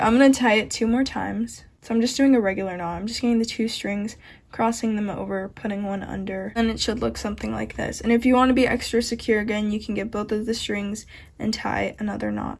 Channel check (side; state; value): both; identical; correlation 1.00